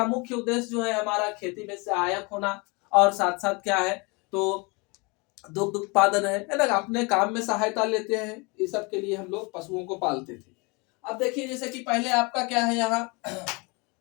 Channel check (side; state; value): right; quieter; 28.8 dB